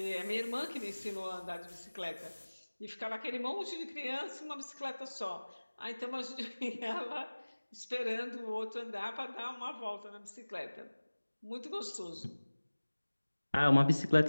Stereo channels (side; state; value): both; inverted; correlation -1.00